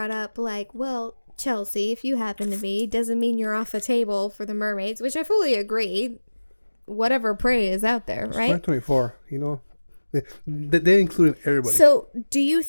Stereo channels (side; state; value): both; inverted; correlation -1.00